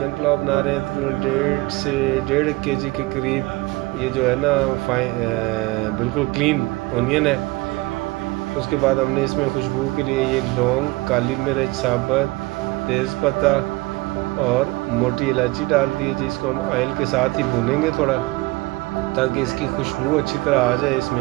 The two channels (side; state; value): left; quieter; 22.3 dB